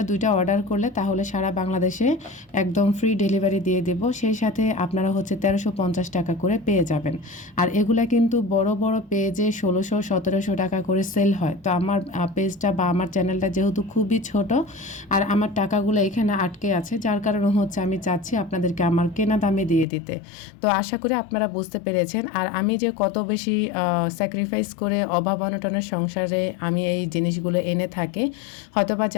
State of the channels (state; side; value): drops out; right; at 19.9 s